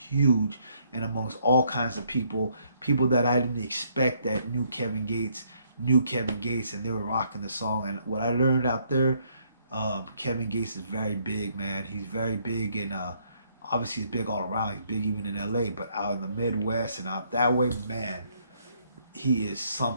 and amongst all kinds of people, people that I didn't expect that knew Kevin Gates, and they were rocking the song. And what I learned out there, Kevin Gates is very big, man. He's very big, and obviously he's big all around. He's big even in LA, but out in the Midwest and out that way, man, he is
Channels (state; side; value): inverted; both; correlation -0.69